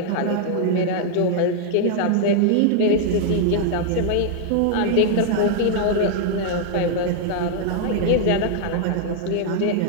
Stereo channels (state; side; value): different; both; correlation -0.01